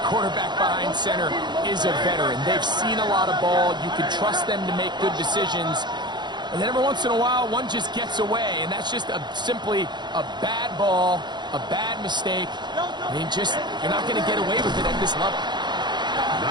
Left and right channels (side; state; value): left; late; 0.21 ms